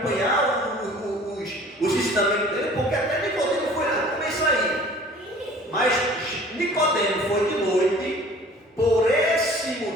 os ensinamentos dele? Porque até Nicodemo foi lá, como é isso aí? Mas Nicodemo foi de noite, por esse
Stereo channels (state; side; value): normal; both; correlation 0.48